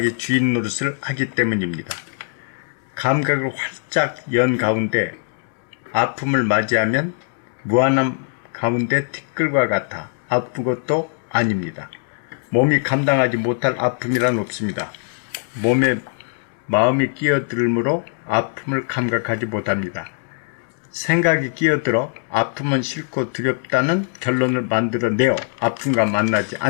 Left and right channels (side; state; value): right; silent; digital silence